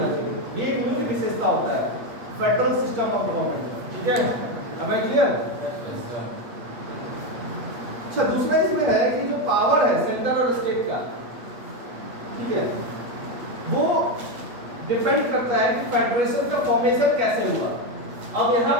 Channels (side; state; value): left; late; 8.3 ms